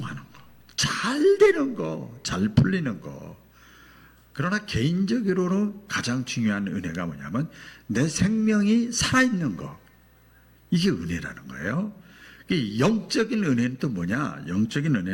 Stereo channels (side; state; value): both; identical; correlation 1.00